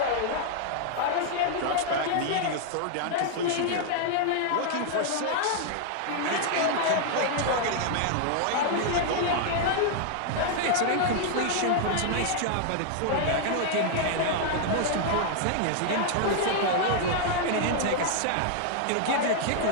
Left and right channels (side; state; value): both; different; correlation 0.00